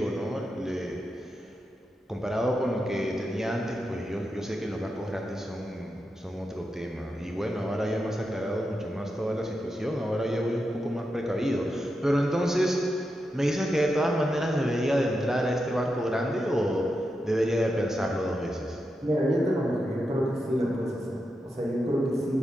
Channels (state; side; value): normal; both; correlation 0.87